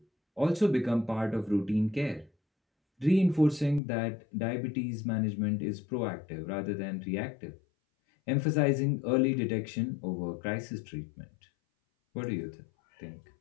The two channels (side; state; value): right; drops out; at 3.8 s